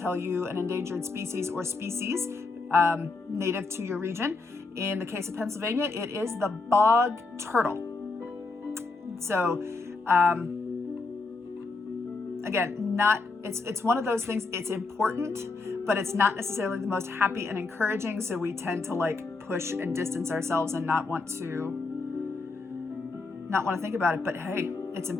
you an endangered species or species native to your region. In the case of Pennsylvania, it is the bog turtle. So again, it's one of those things, it's important, but it's not necessarily the most happy and encouraging. So we tend to push and distance ourselves and not want to think about it. But hey, It's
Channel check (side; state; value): right; quieter; 3.8 dB